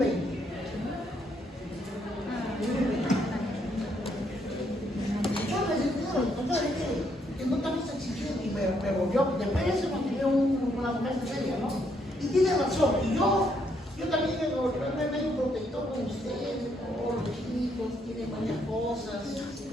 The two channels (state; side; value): normal; both; correlation 0.73